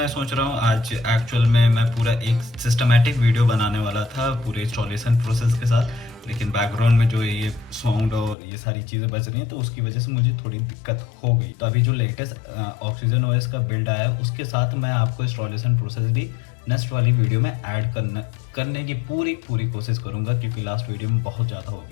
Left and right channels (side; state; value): right; drops out; at 8.3 s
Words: सोच रहा हूँ आज एक्चुअल में मैं पूरा एक सिस्टमेटिक वीडियो बनाने वाला था पूरे इंस्टॉलेशन प्रोसेस के साथ, लेकिन बैकग्राउंड में जो ये साउंड और ये सारी चीज़ें बज रही हैं तो उसकी वजह से मुझे थोड़ी दिक्कत हो गई। तो अभी जो लेटेस्ट ऑक्सीजन OS का बिल्ड आया उसके साथ मैं आपको इंस्टॉलेशन प्रोसेस भी नेक्स्ट वाली वीडियो में ऐड करने की पूरी कोशिश करूंगा, क्योंकि लास्ट वीडियो में बहुत ज़्यादा हो